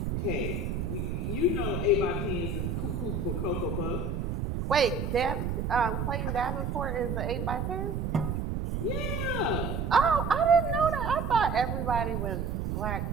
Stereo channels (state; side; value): noise; right; rumble, 1 dB below the sound